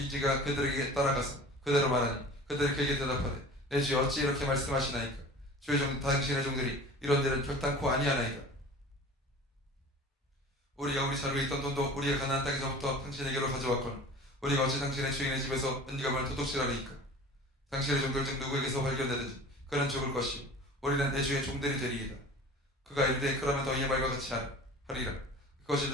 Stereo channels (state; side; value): normal; both; correlation 0.41